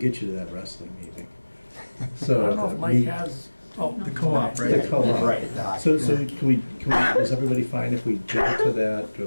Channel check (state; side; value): inverted; both; correlation -1.00